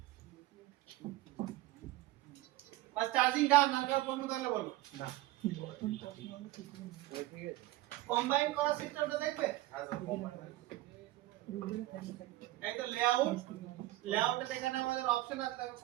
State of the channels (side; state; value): left; quieter; 17.0 dB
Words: বাস চার্জিং ডান নাকার প্রশ্ন তাহলে বলো না কম্বাইন করা সিস্টেমটা দেখবে এই তো লেআউটে এখানে আমাদের অপশন আছে দেখো